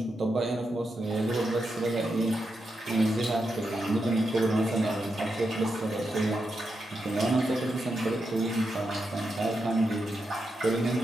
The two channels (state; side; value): normal; both; correlation 0.86